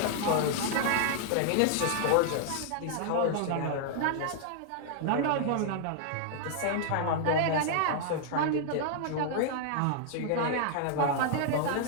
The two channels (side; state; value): both; different; correlation -0.01